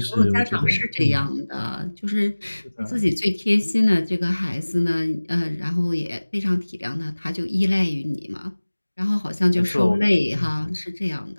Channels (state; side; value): inverted; both; correlation -1.00